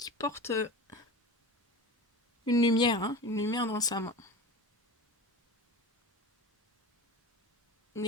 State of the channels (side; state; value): both; normal; correlation 0.31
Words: une lumière dans sa main. Une